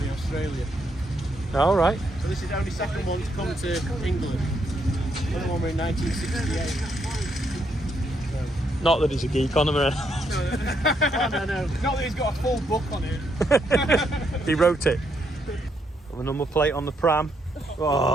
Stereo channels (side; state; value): both; normal; correlation 0.76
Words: in Australia. All right. So this is the only second one to come to England. The other one were in 1968. Not that he's a geek on them or anything. No. Not that he's got a full book on it. He wrote it. Got the number plate on the pram.